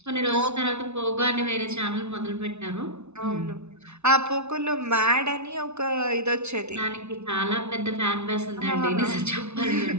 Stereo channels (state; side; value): late; left; 0.81 ms